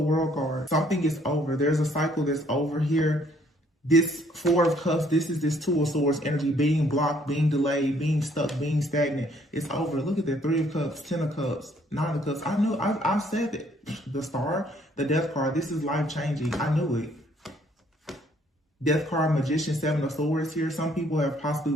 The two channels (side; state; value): both; normal; correlation 0.64